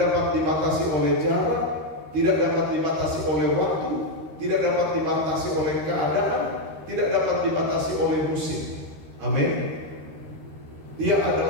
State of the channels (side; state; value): left; late; 13 ms